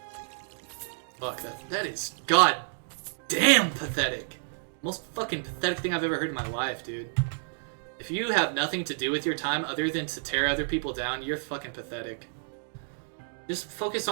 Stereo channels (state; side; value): silent; left; digital silence